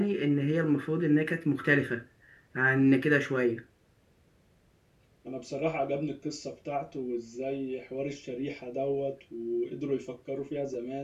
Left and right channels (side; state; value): both; identical; correlation 1.00